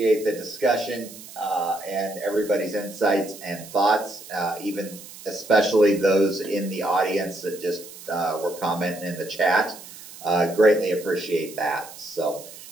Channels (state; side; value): noise; right; hiss, 16 dB below the sound